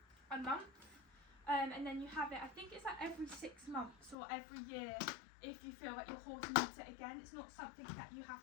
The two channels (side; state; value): right; drops out; at 4.2 s